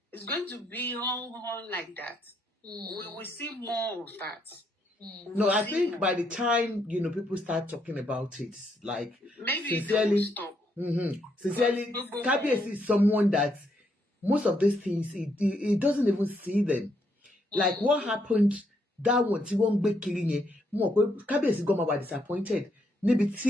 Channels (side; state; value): both; normal; correlation 0.75